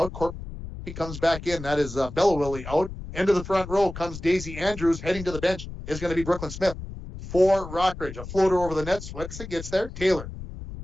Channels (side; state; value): left; noise; rumble, 11 dB below the sound